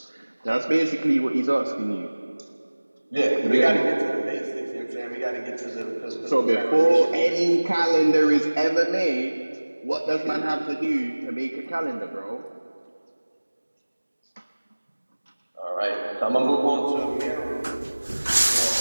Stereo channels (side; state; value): both; inverted; correlation -1.00